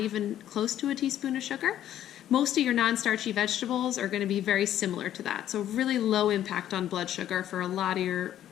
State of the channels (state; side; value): quieter; right; 11.5 dB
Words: close to a teaspoon of sugar, most of your non-starchy vegetables are going to be very similar to that. So really low impact on blood sugar for a lot of